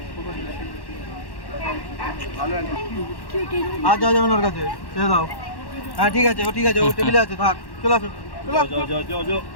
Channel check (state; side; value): late; right; 1.1 ms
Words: आ जाओ जाओ नरका से चले जाओ हां ठीक है वो टेबल আছে থাক চলো চলো जो